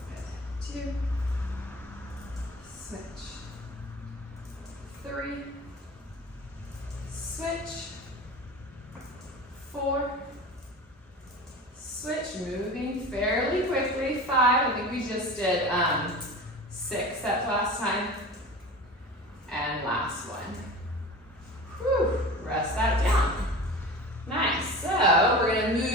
2, switch. 3, switch. 4, switch, moving fairly quickly. 5, I think we just did 6 sets last time. And last one. Whew, rest that down. Nice, so we're gonna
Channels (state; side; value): normal; both; correlation 0.35